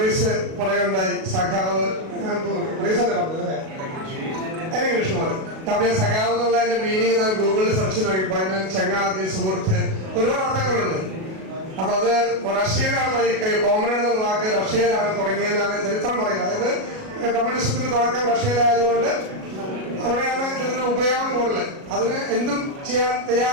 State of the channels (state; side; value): late; left; 37 ms